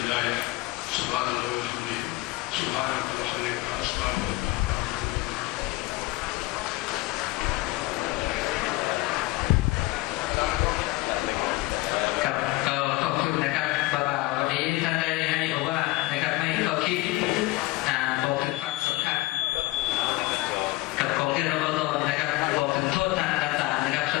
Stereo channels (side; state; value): right; quieter; 20.3 dB